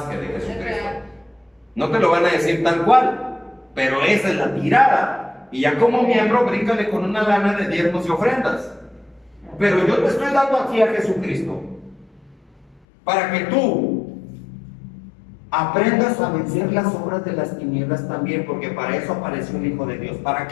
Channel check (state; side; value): drops out; right; at 12.8 s